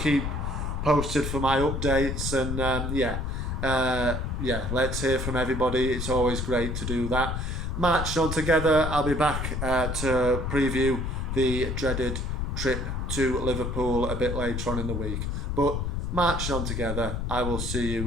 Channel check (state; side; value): noise; left; rumble, 2 dB below the sound